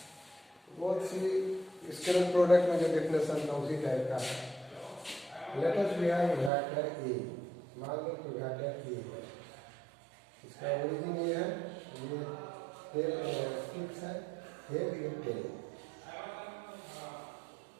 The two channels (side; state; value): left; drops out; at 6.5 s